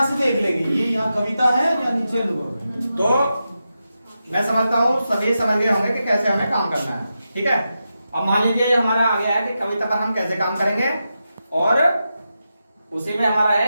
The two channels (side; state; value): both; inverted; correlation -0.89